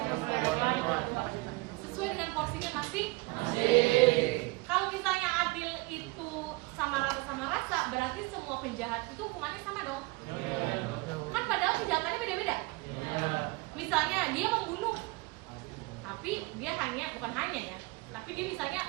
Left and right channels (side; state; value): left; quieter; 24.7 dB